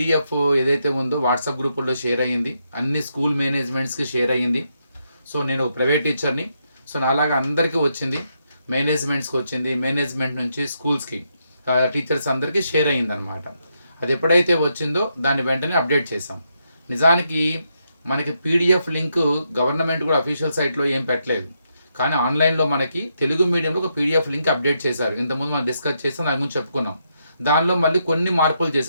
ఏదైతే ఉందో వాట్సాప్ గ్రూపుల్లో షేర్ అయ్యింది, అన్ని స్కూల్ మేనేజ్మెంట్స్కి షేర్ అయ్యింది. సో నేను ప్రైవేట్ టీచర్ని, సో నాలాగా అందరికీ వచ్చింది, మేనేజ్మెంట్స్కి వచ్చింది, మేనేజ్మెంట్ నుంచి స్కూల్స్కి టీచర్స్ అందరికీ షేర్ అయ్యిందనమాట. అది ఎప్పుడైతే వచ్చిందో దాన్ని వెంటనే అప్డేట్ చేసాం. నిజానికి మనకి పీడిఎఫ్ లింక్ గవర్నమెంట్ కూడా అఫీషియల్ సైట్లో ఏం పెట్టలేదు, కానీ ఆన్లైన్లో మనకి తెలుగు మీడియంలో ఒక పీడిఎఫ్ లింక్ అప్డేట్ చేశారు. ఇంతకుముందు మనం డిస్కస్ చేసాం, దాని గురించి చెప్పుకున్నాం. దానిలో మళ్ళీ కొన్ని మార్పులు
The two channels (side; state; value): both; inverted; correlation -0.80